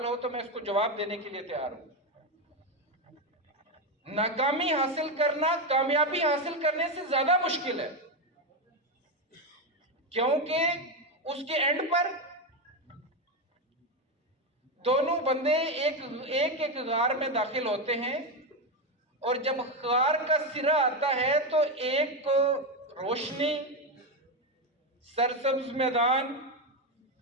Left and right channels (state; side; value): normal; both; correlation 0.10